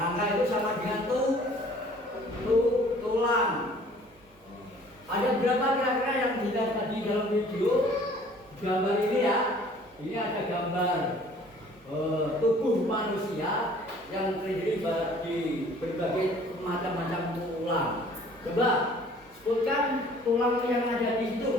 itu sama dengan tulang. Ada berapa kira-kira yang dilihat tadi dalam video gambar ini ya? Ini ada gambar tubuh manusia yang terdiri dari berbagai macam-macam tulang. Coba sebutkan tulang yang ada di situ,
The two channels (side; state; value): both; normal; correlation 0.53